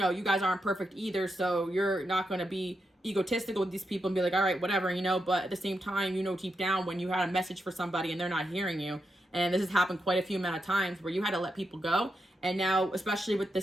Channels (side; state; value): both; normal; correlation 0.85